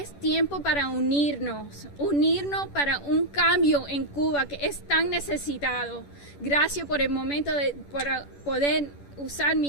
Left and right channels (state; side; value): late; right; 10 ms